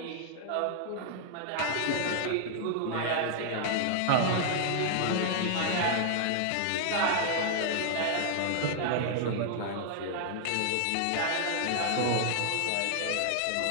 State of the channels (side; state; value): both; different; correlation -0.01